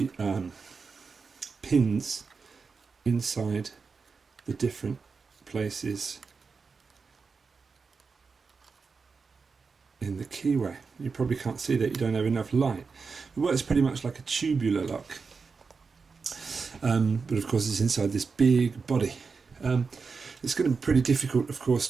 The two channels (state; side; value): quieter; left; 4.9 dB